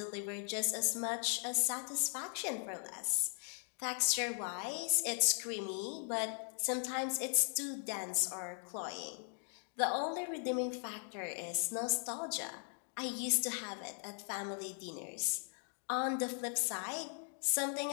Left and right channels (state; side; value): silent; right; 52 dB below the other